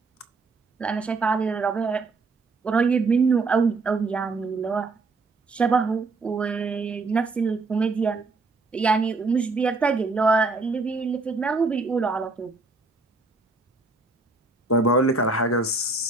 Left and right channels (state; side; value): quieter; left; 3.7 dB